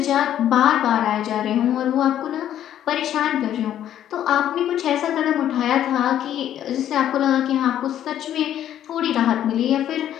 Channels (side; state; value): right; quieter; 11.0 dB